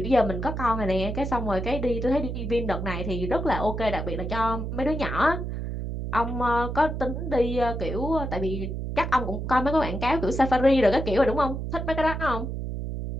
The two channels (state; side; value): noise; right; hum, 4 dB below the sound